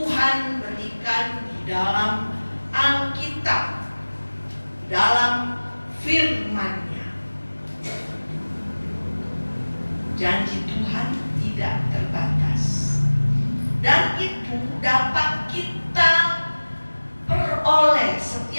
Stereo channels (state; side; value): inverted; both; correlation -1.00